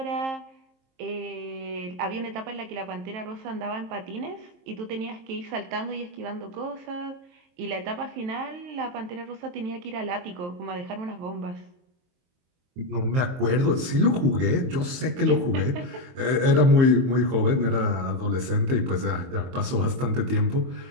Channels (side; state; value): left; late; 23 ms